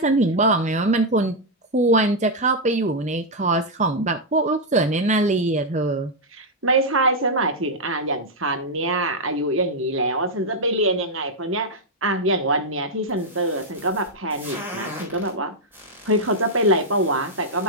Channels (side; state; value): both; normal; correlation -0.02